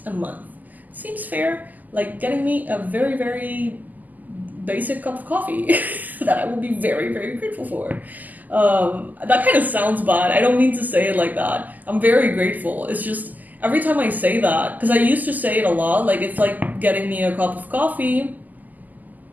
a month. Seems fair, like getting me a very, very basic cup of coffee that I will be very, very grateful for. That kind of sounds bad. I don't mean to say it like that. I'm very grateful. It's just every time I say that, because I used to say it a lot, like it's like getting me a cup of coffee.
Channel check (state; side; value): late; left; 0.082 ms